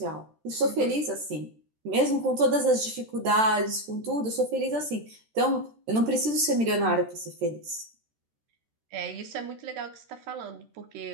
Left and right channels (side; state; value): left; late; 13 ms